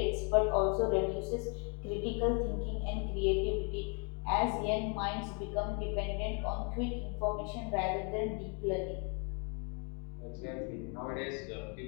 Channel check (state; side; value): quieter; right; 38.6 dB